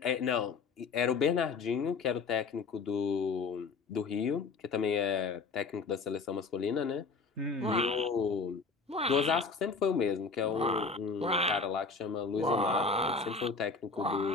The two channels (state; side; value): quieter; right; 4.5 dB